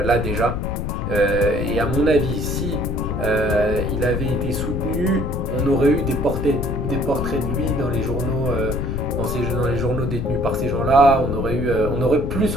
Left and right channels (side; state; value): left; noise; rumble, 3 dB below the sound